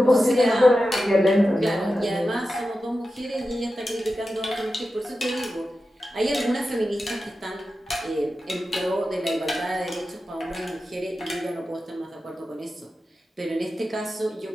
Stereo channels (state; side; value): normal; both; correlation 0.92